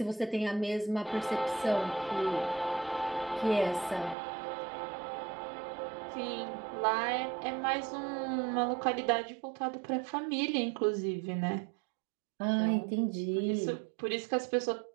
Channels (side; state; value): left; drops out; at 4.2 s